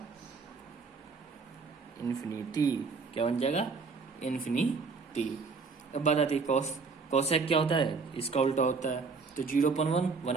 इन्फिनिटी। क्या बन जाएगा, इन्फिनिटी। अब बात आती है कॉस। कॉसेक क्या होता है, इसका उल्टा होता है। तो 0/1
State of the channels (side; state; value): left; quieter; 4.7 dB